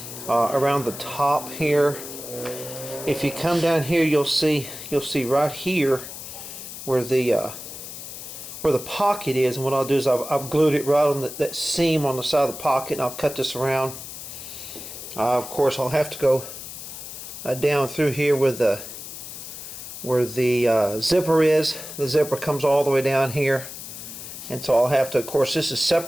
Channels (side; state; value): left; noise; hiss, 11 dB below the sound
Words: around the top here. If you come down here, you'll see right here where the pocket is, and what I'll do is I've glued it right on that seam on the side of the pocket, and I'll cut this around. Of course, I'll have to go down through here where the zipper is. The zipper comes all the way down here, and so I'll have to, of course, this is